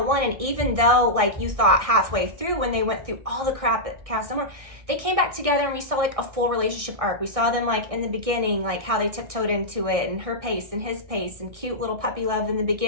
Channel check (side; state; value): left; late; 1.6 ms